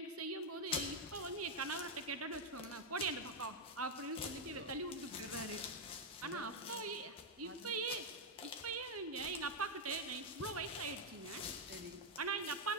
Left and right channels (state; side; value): normal; both; correlation 0.01